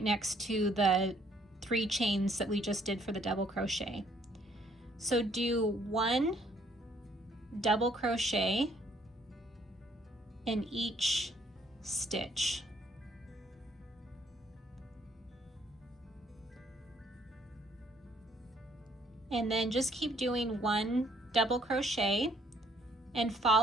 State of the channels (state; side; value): normal; both; correlation 0.66